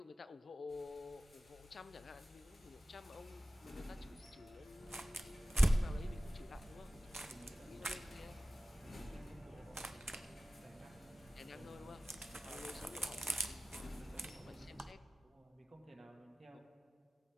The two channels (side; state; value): both; normal; correlation 0.97